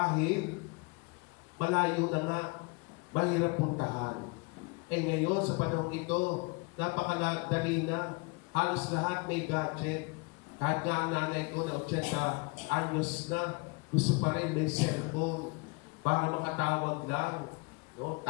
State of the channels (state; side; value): quieter; right; 28.9 dB